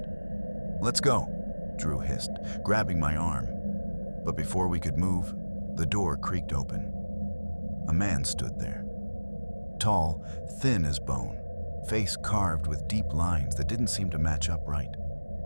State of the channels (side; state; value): both; inverted; correlation -1.00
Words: "Let's go," Drew hissed, grabbing my arm. But before we could move, the door creaked open. A man stood there. Tall, thin as bone, face carved with deep lines that didn't seem to match up right.